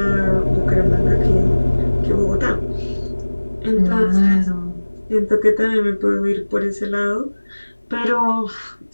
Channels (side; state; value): both; inverted; correlation -1.00